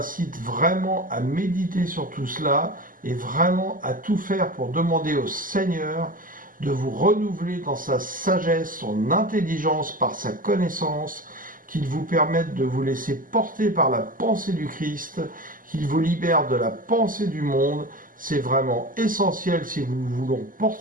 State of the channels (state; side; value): late; left; 0.40 ms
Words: vraiment à méditer sur tout cela, et vraiment à tout faire pour demander au Seigneur de vous renouveler dans sa sagesse, son intelligence, par sa connaissance, qu'il vous permette de vous laisser porter par la pensée du Christ, qu'il vous libère de la pensée du monde. C'est vraiment essentiel si nous voulons